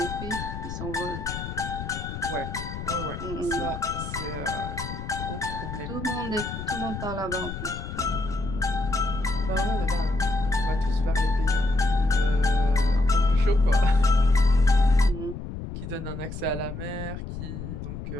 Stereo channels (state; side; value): noise; left; rumble, 8 dB below the sound